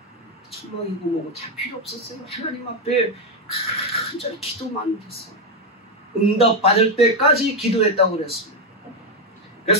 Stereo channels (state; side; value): normal; both; correlation 0.05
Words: 천막이고 뭐고 다 필요 없었어요. 하나님 앞에 간절히 기도만 했어요. 응답받을 때까지 기도했다고 그랬습니다.